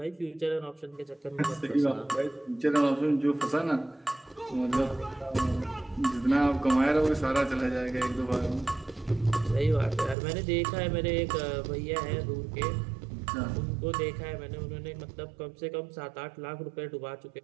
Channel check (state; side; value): drops out; left; at 10.2 s